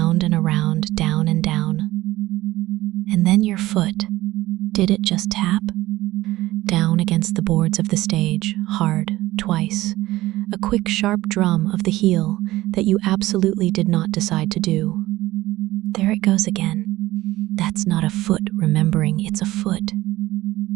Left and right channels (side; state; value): left; quieter; 17.1 dB